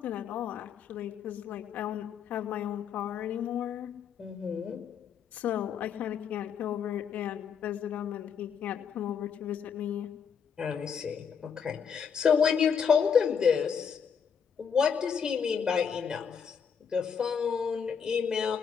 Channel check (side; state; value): right; quieter; 6.9 dB